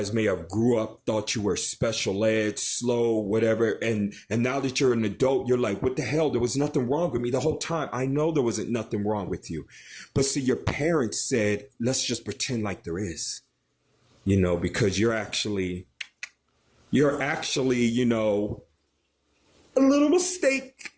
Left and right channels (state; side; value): identical; both; correlation 1.00